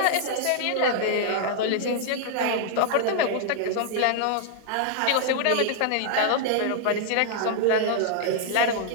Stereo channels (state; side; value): different; both; correlation -0.01